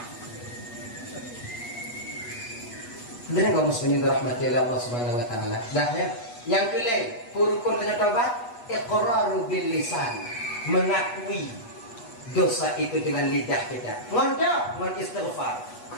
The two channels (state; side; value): late; right; 8.2 ms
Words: Benar kaum muslimin dirahmati Allah Subhanahu wa taala. Dah ya. Yang kelima, rukun dengan taubat, iqraru bil lisan, mengakui dosa itu dengan lidah kita. Ngondok, mengistighfar.